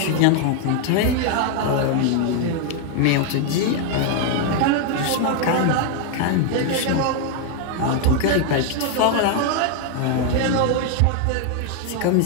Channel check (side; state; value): both; different; correlation 0.00